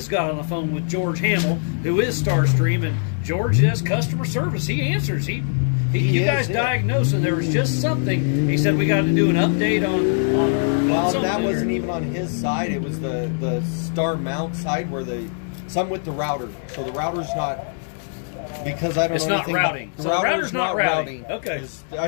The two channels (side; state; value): right; silent; digital silence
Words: got on the phone with George Hamill, who is Starstream, and George does customer service. He answers. You guys diagnosed, and there was just something. He said we got to do an update on Well, something that or- wasn't even on his side. It was the star mount side where some with the router. So the router's not, because I don't It's know not anything about- routing. the So the router's not routing. Okay. Is- I